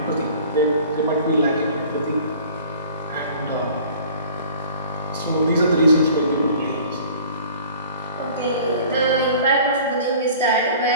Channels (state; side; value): inverted; both; correlation -0.47